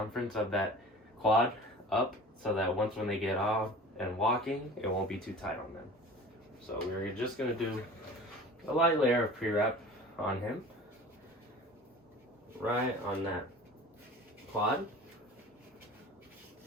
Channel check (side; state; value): both; normal; correlation 0.40